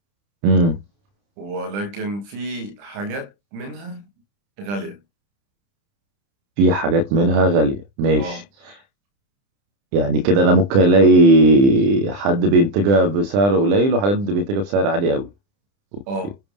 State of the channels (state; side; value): late; left; 30 ms